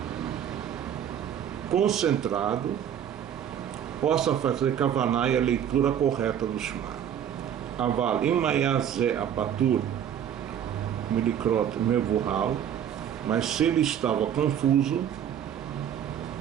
concentrado, possa fazer Kavaná e a leitura correta do Shema. Aval Imayazé Apatur Milikrot Mevuhal, mas se ele estava confuso,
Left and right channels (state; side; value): quieter; left; 9.5 dB